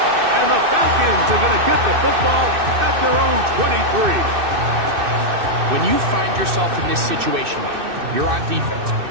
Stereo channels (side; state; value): left; late; 2.6 ms